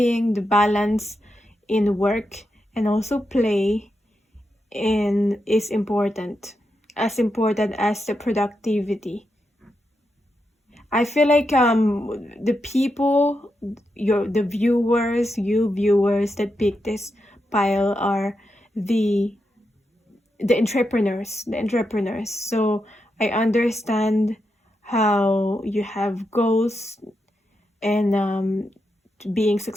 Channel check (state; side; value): normal; both; correlation 0.85